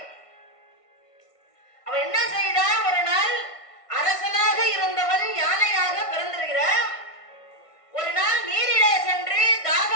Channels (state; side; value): late; right; 1.5 ms